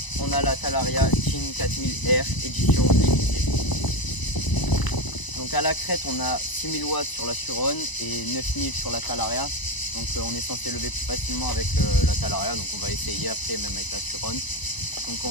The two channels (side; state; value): right; late; 1.0 ms